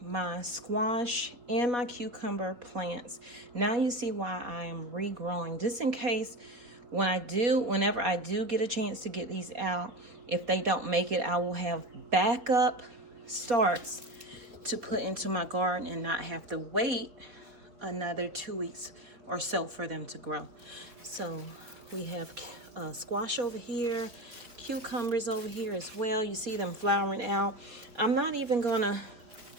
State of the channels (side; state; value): left; late; 4.5 ms